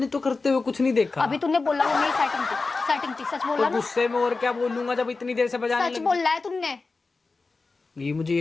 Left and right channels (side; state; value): right; quieter; 3.9 dB